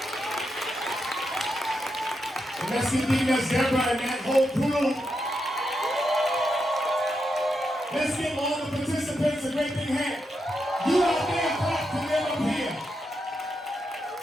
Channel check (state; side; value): normal; both; correlation 0.84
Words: And let's give Deaconess Deborah and that whole crew. Let's give all the participants a great big hand. You out there, clap to them up here.